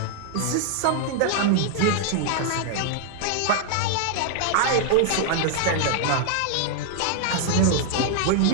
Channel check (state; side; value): different; both; correlation 0.00